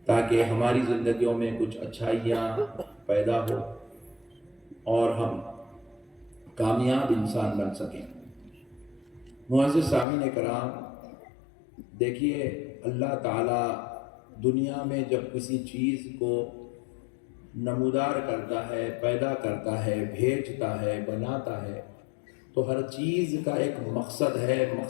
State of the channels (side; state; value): right; drops out; at 10.1 s